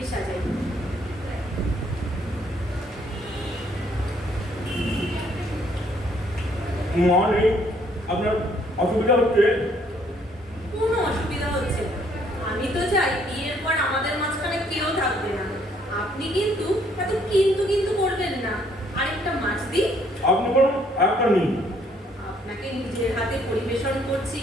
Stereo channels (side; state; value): both; normal; correlation 0.66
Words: সাজাই। মানে আপনার অসুবিধা হচ্ছে? কোনো অসুবিধা হচ্ছে না। আমি তো চাই বিয়ের পর আমাদের মাঝখানে কেউ থাকবে না। আপনি কিন্তু এত কিন্তু কিন্তু করবেন না। আরেকটা মাছ দিই? আপনি বলুন, একটা নিন। আপনাকে নিজের হাতে পরিবেশন করছি,